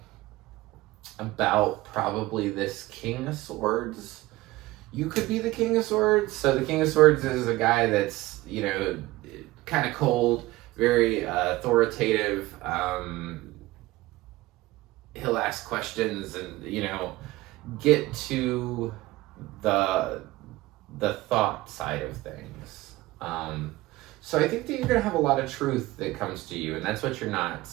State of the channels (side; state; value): left; quieter; 18.8 dB